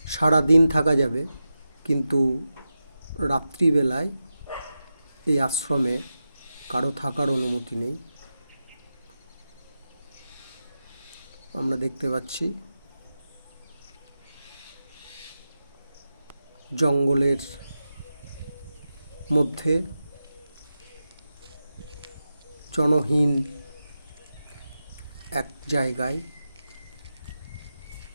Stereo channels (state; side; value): inverted; both; correlation -0.91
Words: সারা দিন থাকা যাবে, কিন্তু রাত্রিবেলায় এই আশ্রমে কারো থাকার অনুমতি নেই। আমরা দেখতে পাচ্ছি জঙ্গলের মধ্যে জনহীন এক জায়গায়